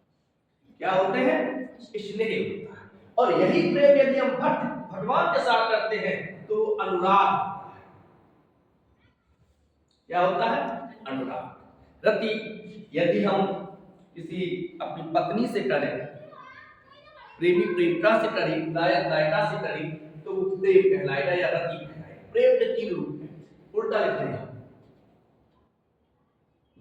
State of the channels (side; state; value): both; identical; correlation 1.00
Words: क्या होते हैं? स्नेह होता है। और यही प्रेम यदि हम भगवान के साथ करते हैं तो अनुराग होता है। क्या होता है? अनुराग। रति यदि हम किसी अपनी पत्नी से करें, प्रेमी प्रेमिका से करें, नायक नायिका से करें, तो वो प्रेम कहलाएगा या रति कहलाएगा। प्रेम के 3 रूप हैं, उल्टा लिखते हैं